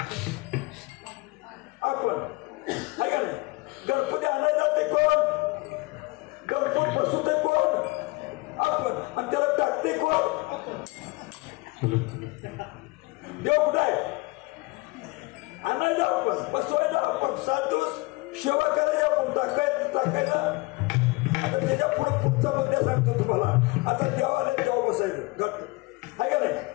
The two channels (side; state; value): right; quieter; 24.9 dB